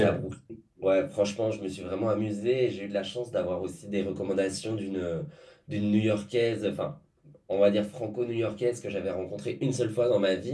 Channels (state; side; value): identical; both; correlation 1.00